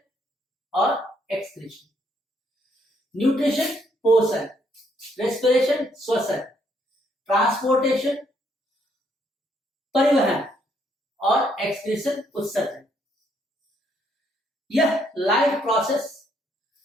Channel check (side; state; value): both; normal; correlation 0.71